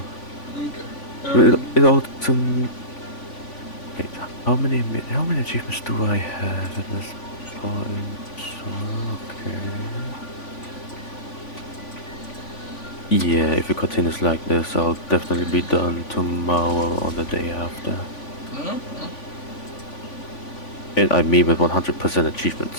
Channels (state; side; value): late; right; 3.5 ms